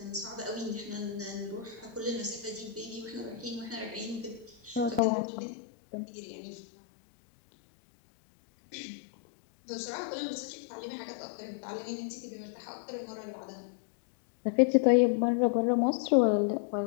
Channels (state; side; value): drops out; right; at 5.0 s